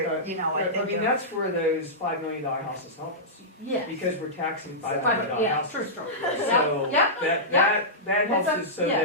you know, I I think mean, of- that's where those $5 million houses help us, yeah. because we're taxing $5 million Yeah, houses. true. So Yeah, that helps That's a- us so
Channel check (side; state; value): both; normal; correlation -0.14